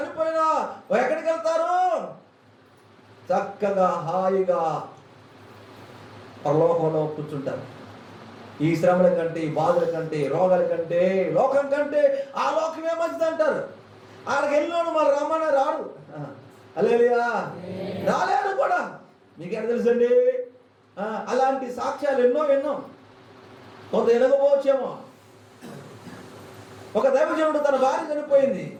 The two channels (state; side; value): identical; both; correlation 1.00